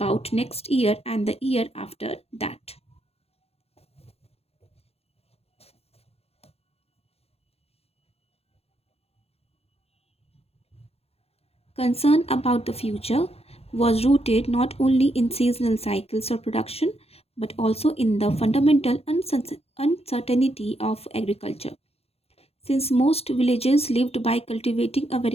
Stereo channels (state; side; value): late; right; 0.29 ms